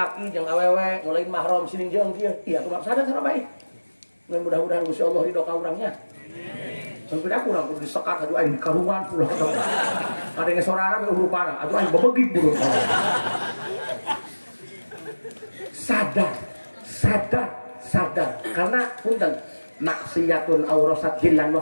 jeung awewe ngulain mahram sining jeung kieu, iya tuh sadar sana baik. Mudah-mudahan Gusti Allah ridho ka urangnya. Sampai aku urang kudu disekat atuh aing karuan pula ketemu. Ada ngesorana be urupana, atuh aing bebegik buruk. Sadar karena punten maksiatun aurasat hillan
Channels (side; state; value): both; inverted; correlation -1.00